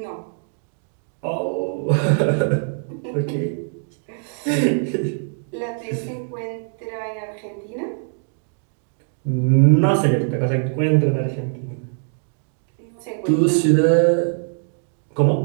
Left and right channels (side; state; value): left; silent; digital silence